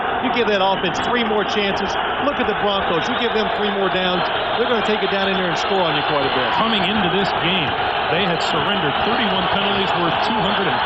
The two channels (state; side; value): identical; both; correlation 1.00